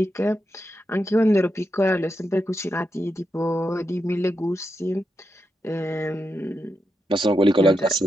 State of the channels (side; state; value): both; normal; correlation 0.86